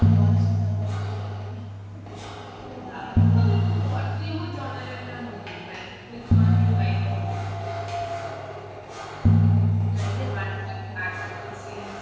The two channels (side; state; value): both; identical; correlation 1.00